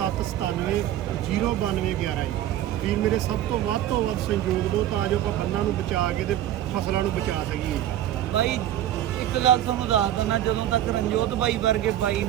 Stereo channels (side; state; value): left; quieter; 12.4 dB